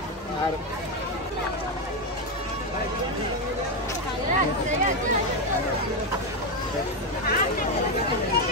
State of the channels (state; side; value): normal; both; correlation 0.08